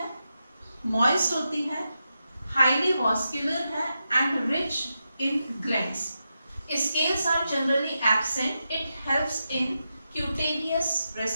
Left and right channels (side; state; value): both; inverted; correlation -0.88